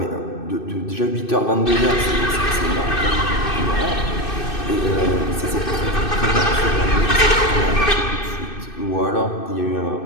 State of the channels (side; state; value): right; late; 2.6 ms